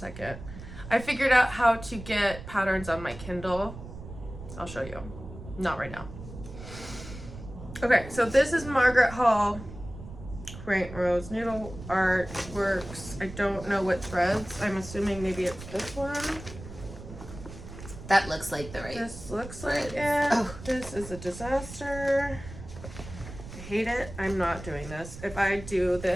I figured out how to get patterns on my Kindle. I'll show you. Not right now. Okay, so this is Margaret Hall Quaint Rose Needle Art Works. I don't know what threads. I'm assuming maybe it's this one. That looks like the right. This looks like it. Oh. This is a disaster. I hate it. I'm not doing this. If I do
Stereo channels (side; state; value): right; noise; rumble, 13 dB below the sound